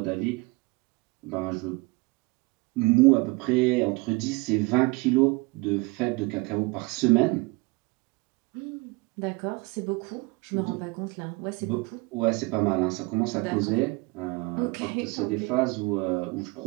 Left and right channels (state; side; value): quieter; left; 25.5 dB